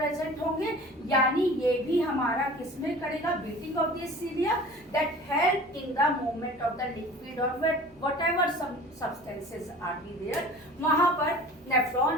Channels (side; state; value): both; normal; correlation 0.42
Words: होंगे, यानी ये भी हमारा किसमें करेगा, beating of this cilia that help in the movement of the liquid और whatever substances are be there. वहां पर